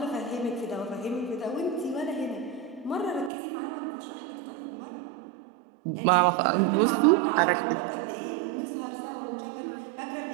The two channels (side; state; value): left; drops out; at 3.3 s